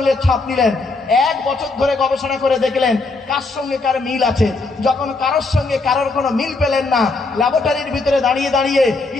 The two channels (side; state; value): right; quieter; 3.6 dB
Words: ছাপ নিলেন, 1 বছর ধরে গবেষণা করে দেখলেন কার সঙ্গে কার মিল আছে। যখন কারোর সঙ্গে কারোর কোনো মিল পেলেন না, ল্যাবরেটরির ভিতরে দাঁড়িয়ে দাঁড়িয়ে